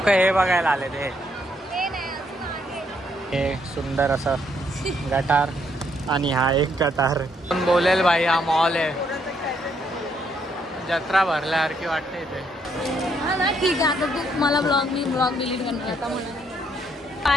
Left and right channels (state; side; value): normal; both; correlation 0.72